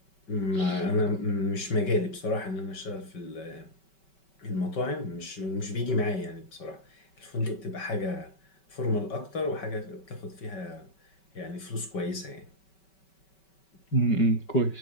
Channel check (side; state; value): right; late; 5.2 ms